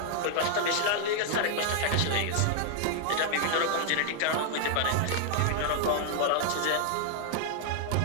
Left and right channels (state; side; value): different; both; correlation 0.00